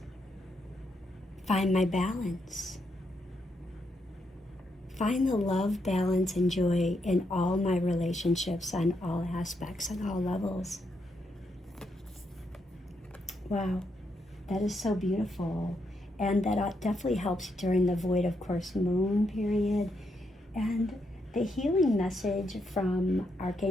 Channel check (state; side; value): normal; both; correlation 0.79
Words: find my balance, find the love, balance, and joy in all my relationships on all aspects, on all levels. Wow, that is so beautiful. And that definitely helps during the void of course moon period. And the healing message from